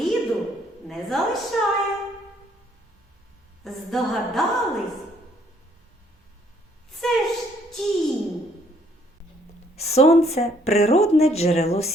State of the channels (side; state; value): both; normal; correlation 0.65